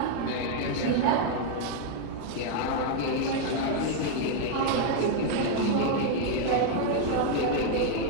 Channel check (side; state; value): both; different; correlation 0.00